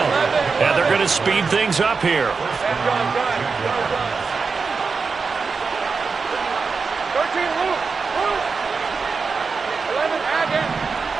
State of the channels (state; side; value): quieter; left; 4.8 dB